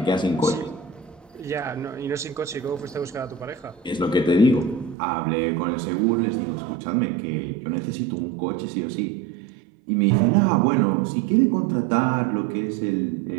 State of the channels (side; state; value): left; drops out; at 5.0 s